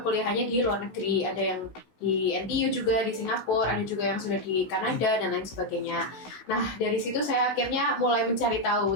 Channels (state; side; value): late; right; 16 ms